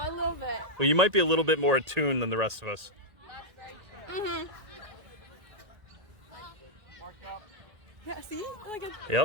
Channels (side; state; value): left; late; 1.8 ms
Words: a little bit. Well, you might be a little bit more attuned than the rest of us. Mm-hmm. Yeah, see? Like a,